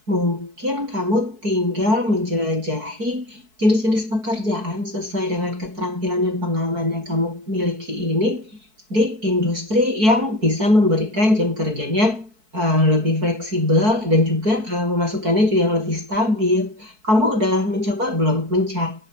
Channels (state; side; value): late; left; 4.6 ms